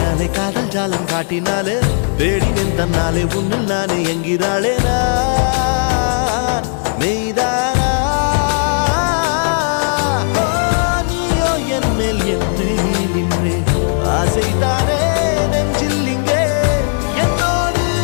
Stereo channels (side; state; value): right; silent; digital silence